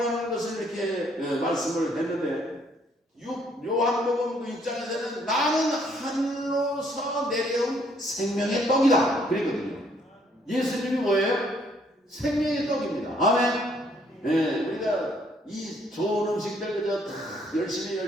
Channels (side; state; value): both; normal; correlation 0.66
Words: 하는 것을 이렇게 말씀을 했는데, 요한복음 6장에서는 나는 하늘로서 내려온 생명의 떡이다 그랬거든요. 예수님이 뭐예요? 생명의 떡입니다. 아멘. 우리가 이 좋은 음식들 그저 다